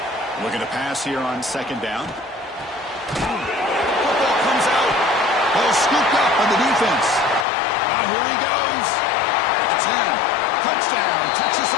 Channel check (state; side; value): drops out; right; at 7.5 s